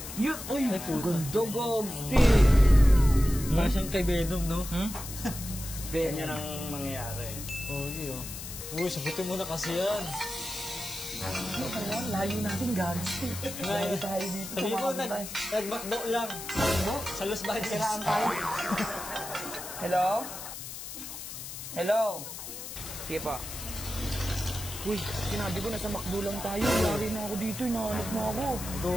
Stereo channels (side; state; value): left; noise; hiss, 9 dB below the sound